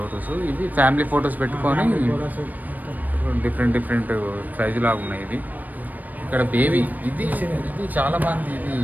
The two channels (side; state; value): left; late; 0.083 ms